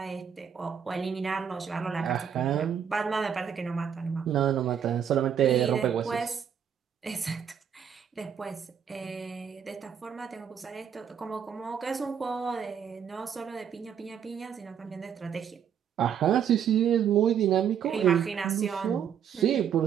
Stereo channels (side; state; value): left; quieter; 8.1 dB